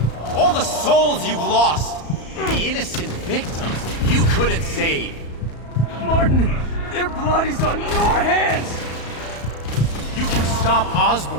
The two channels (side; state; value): right; late; 34 ms